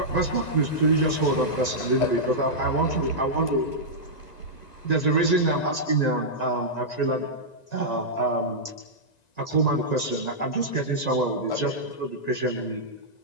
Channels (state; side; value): late; right; 1.9 ms